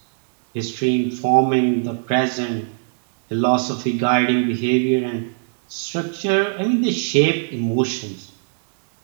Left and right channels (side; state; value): left; silent; digital silence